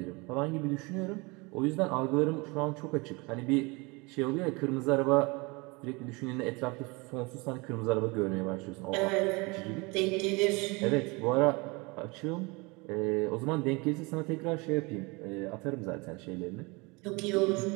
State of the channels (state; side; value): quieter; left; 26.7 dB